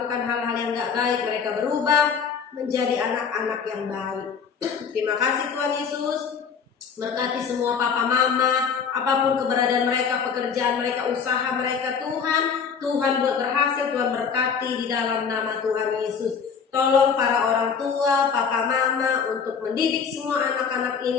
hal-hal yang gak baik, mereka berubah menjadi anak-anak yang baik. Terima kasih Tuhan Yesus. Berkati semua papa mama, apapun keberadaan mereka, pekerjaan mereka, usaha mereka Tuhan buat berhasil, Tuhan berkati di dalam nama Tuhan Yesus. Tolong para orang tua, papa mama untuk mendidik semua anak-anak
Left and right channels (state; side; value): quieter; right; 6.4 dB